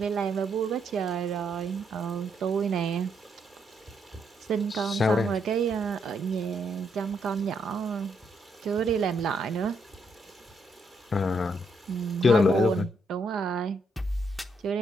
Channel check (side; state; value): both; normal; correlation 0.76